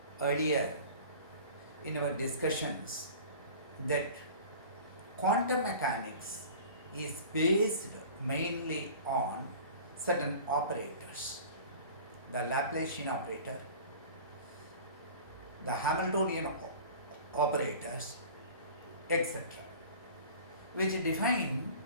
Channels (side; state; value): both; inverted; correlation -0.41